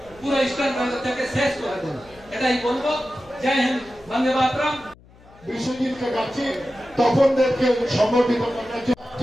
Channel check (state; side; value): noise; left; hum, 25 dB below the sound